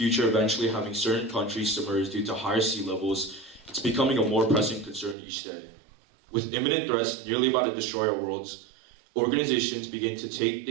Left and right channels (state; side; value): drops out; left; at 5.2 s